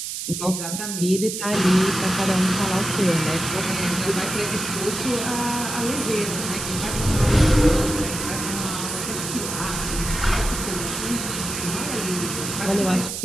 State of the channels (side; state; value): right; noise; hiss, 5 dB below the sound